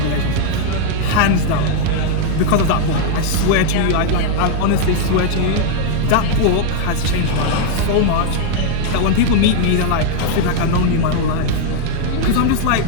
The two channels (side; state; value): both; different; correlation 0.00